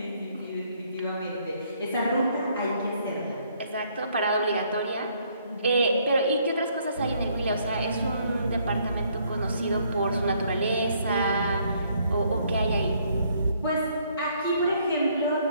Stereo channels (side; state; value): both; inverted; correlation -0.67